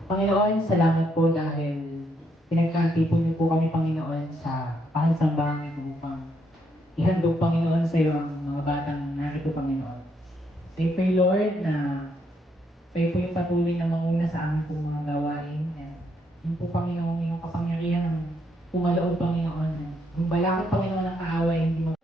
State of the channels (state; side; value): normal; both; correlation 0.75